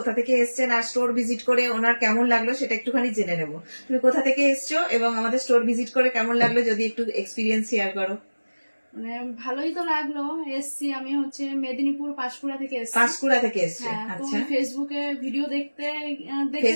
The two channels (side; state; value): both; inverted; correlation -1.00